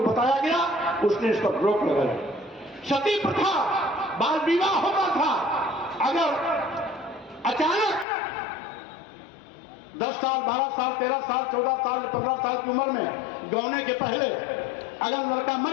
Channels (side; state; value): right; drops out; at 8.1 s